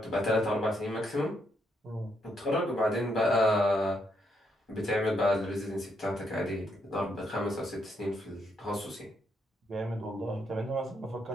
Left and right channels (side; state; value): both; normal; correlation 0.76